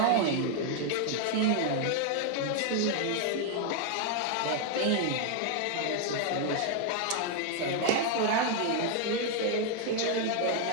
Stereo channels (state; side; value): different; both; correlation 0.00